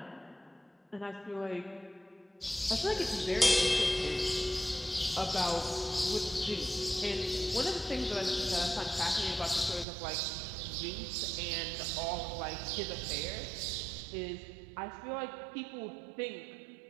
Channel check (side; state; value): left; drops out; at 9.9 s